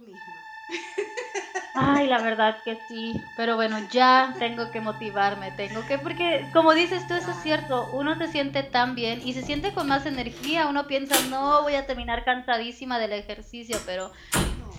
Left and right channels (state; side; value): identical; both; correlation 1.00